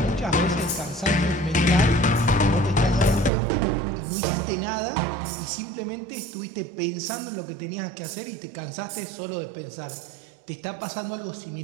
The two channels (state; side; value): drops out; left; at 3.3 s